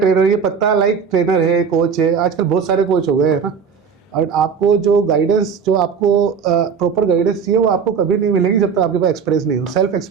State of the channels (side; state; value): left; quieter; 6.3 dB